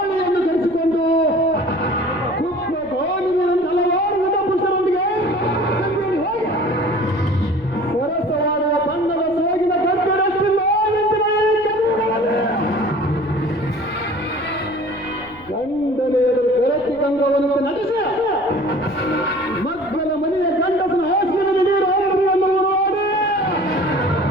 ಧರಿಸಿಕೊಂಡು ಕುಪ್ಪ ಗೋಲಿನ ಹಲವಾರು ಯುವ ಪುರುಷರೊಂದಿಗೆ ಹೋಗಿ ಸರಸವಾಡುವ ಬಣ್ಣದ ಸೋಗಿನ ಗದ್ದೆರಷ್ಟಿಲ್ಲ ಗಂಡನೇ ಎದುರು ಬೆರತಿ ಕಂಗವನ್ನು ನಡೆಸಿ ಮಕ್ಕಳ ಮನೆಯ ಗಂಡಸನ ಹಾಸಿಗೆ ನೀರು ಎಂದು ನೋಡಿ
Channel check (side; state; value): left; noise; rumble, 24 dB below the sound